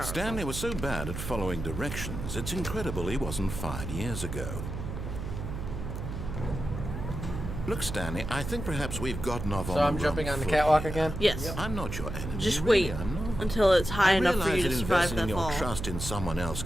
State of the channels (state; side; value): noise; right; hum, 6 dB below the sound